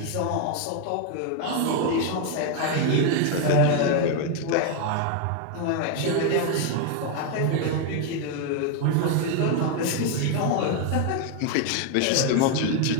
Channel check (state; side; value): different; both; correlation 0.01